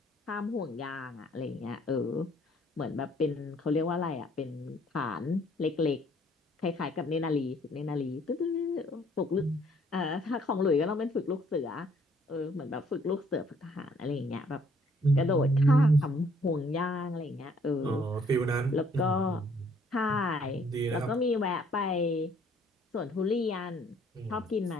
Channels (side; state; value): both; normal; correlation 0.63